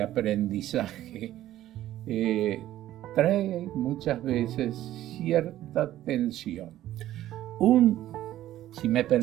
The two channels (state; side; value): quieter; left; 13.5 dB